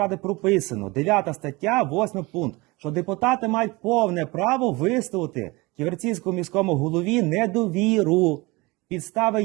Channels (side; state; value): left; quieter; 23.7 dB